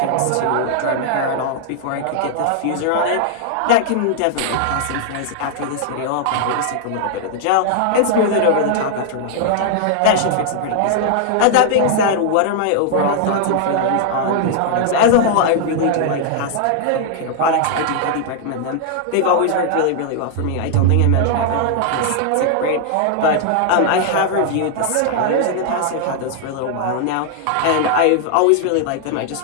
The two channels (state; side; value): different; both; correlation -0.01